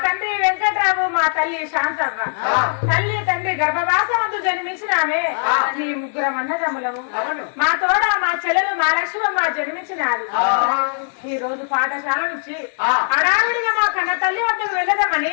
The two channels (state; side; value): silent; right; digital silence